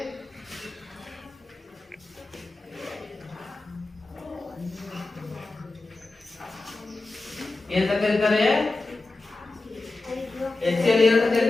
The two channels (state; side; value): quieter; right; 3.3 dB